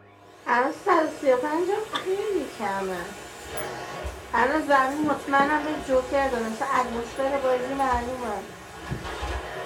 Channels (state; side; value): identical; both; correlation 1.00